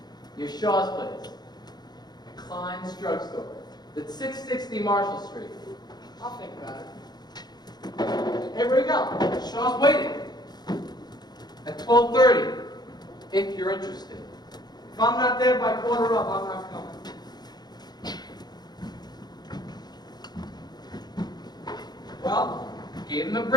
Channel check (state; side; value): late; right; 0.20 ms